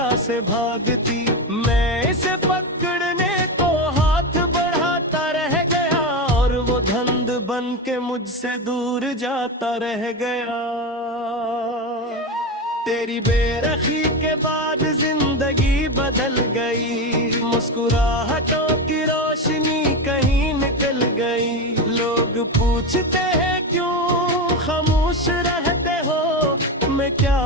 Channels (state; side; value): normal; both; correlation 0.17